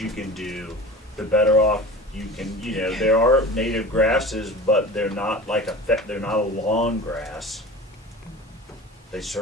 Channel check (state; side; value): normal; both; correlation 0.36